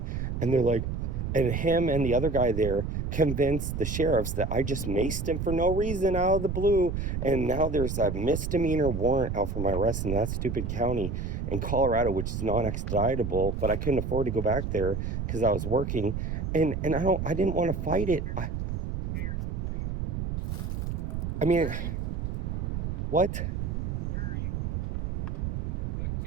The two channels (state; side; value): noise; right; rumble, 3 dB below the sound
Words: and they're like, and him and the other guy there convinced the sheriffs that I just maced him for no reason out of the blue. And now there's a misdemeanor warrant out for my arrest in that stupid county in Colorado, which is non-extraditable, but I couldn't afford to go back there because I was working. And I didn't want to fight it. I mean, what?